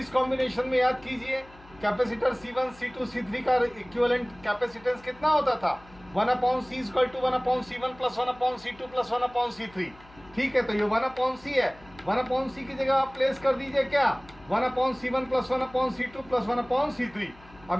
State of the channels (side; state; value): left; noise; hum, 24 dB below the sound